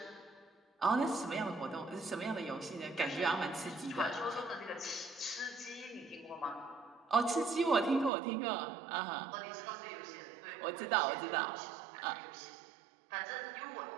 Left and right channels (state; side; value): drops out; left; at 8.1 s